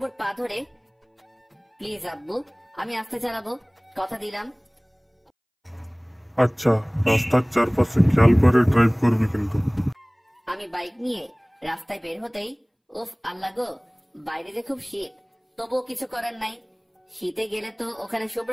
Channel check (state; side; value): identical; both; correlation 1.00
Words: পা ধরে, প্লিজ আব্বু, আমি আস্তে চালাবো, কথা দিলাম। আচ্ছা, রাস্তার চারপাশে খেয়াল করে ড্রাইভ করবি কিন্তু। আমি বাইক নিয়ে রাস্তায় বের হতেই, উফ আল্লাহ গো, বাইরে যে খুব শীত, তবুও কিছু করার নাই। শীতে গেলে তো ওখানে